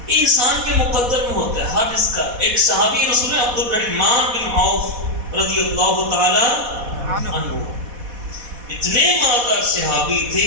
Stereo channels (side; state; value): left; late; 4.1 ms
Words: یہ انسان کے مقدر میں ہوتا ہے ہر اس کا. ایک صحابی رسول عبد الرحمن بن عوف رضی اللہ تعالی عنہ، اتنے مالدار صحابی تھے،